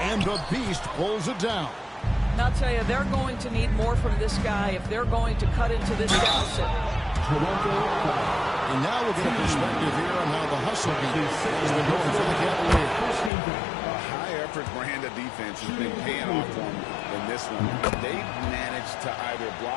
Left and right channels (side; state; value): right; drops out; at 13.3 s